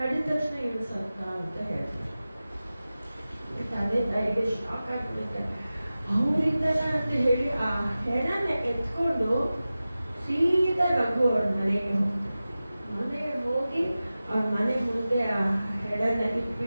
ತಕ್ಷಣ ಏನು ಸತ್ತ ಅಂತ ಹೇಳ್ತಾರೆ. ತಂದೆ ತಾಯಿಗೆ ಶಾಕ್ ಆಗಿಬಿಡುತ್ತೆ. ಅವರಿಂದನ ಅಂತ ಹೇಳಿ ಆ ಹೆಣನ ಎತ್ಕೊಂಡು ಸೀದಾ ರಘು ಅವ್ರ ಮನೆಗೆ ಹೋಗಿ ಅವ್ರ ಮನೆ ಮುಂದೆ ಆ ಹೆಣನ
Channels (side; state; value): both; inverted; correlation -0.96